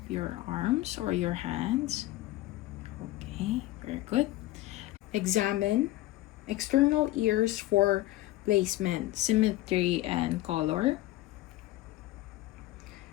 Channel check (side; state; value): right; quieter; 16.7 dB